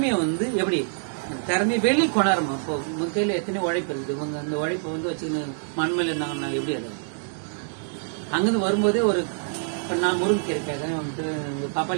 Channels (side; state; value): left; silent; 61 dB below the other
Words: வந்து எப்படி திறமையை வெளியே கொண்டாடுமா? இப்போ உங்க கையில எத்தனை உழைப்பு இருக்குது, இவங்க அந்த உழைப்பை வந்து வச்சுன்னு மண்மையில இருந்தாங்கன்னா எப்படி? அது அங்கிருந்து வரும்போதே ஒரு நான் முருங்கீரை கேட்கறேன், வந்துட்டு